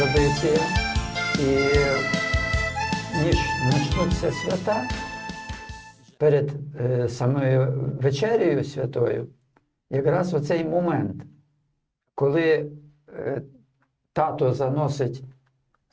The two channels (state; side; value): identical; both; correlation 1.00